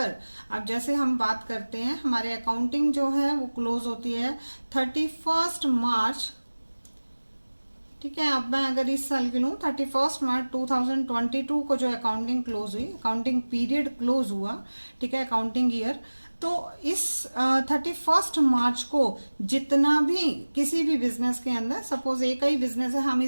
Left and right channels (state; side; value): inverted; both; correlation -1.00